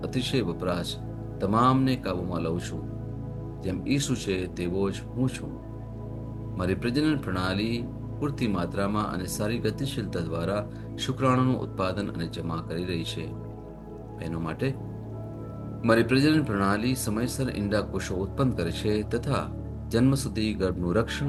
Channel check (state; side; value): identical; both; correlation 1.00